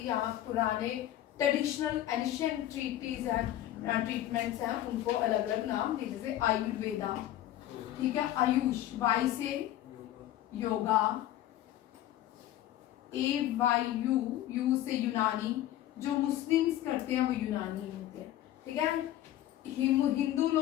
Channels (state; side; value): quieter; right; 13.2 dB